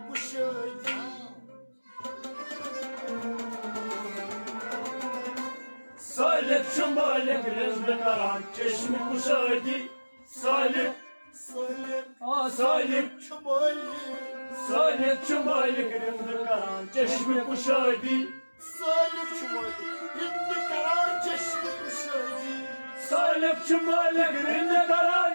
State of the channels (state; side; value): inverted; both; correlation -1.00